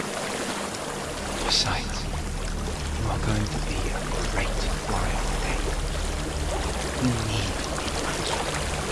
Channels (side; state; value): both; identical; correlation 1.00